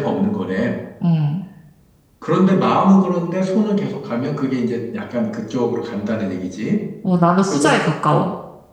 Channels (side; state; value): both; identical; correlation 1.00